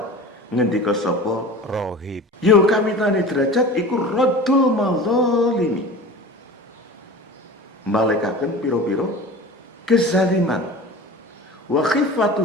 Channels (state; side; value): normal; both; correlation 0.36